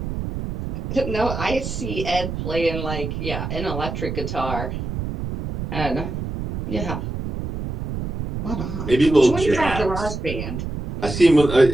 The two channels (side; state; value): right; noise; rumble, 4 dB below the sound